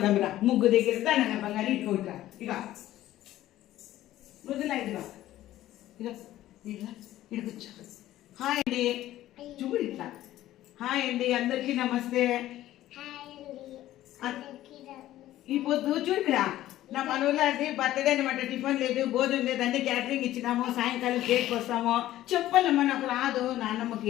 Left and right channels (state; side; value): quieter; right; 14.2 dB